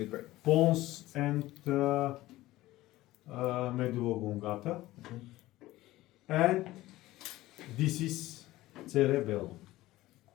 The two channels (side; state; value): right; quieter; 17.0 dB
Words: pons and medulla oblongata, and this is cerebellum.